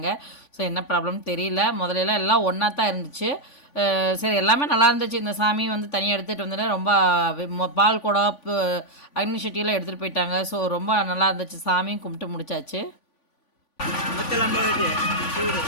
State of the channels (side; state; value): right; late; 3.5 ms